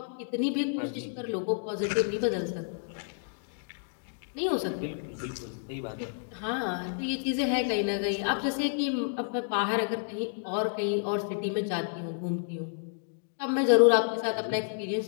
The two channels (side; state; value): right; silent; digital silence